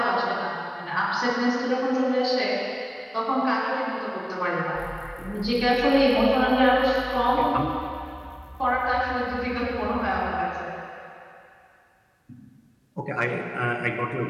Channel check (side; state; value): both; identical; correlation 1.00